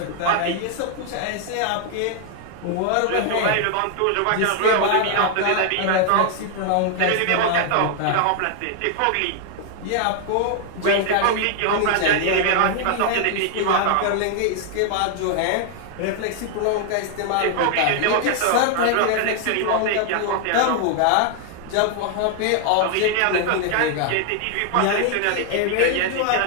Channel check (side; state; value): both; different; correlation 0.00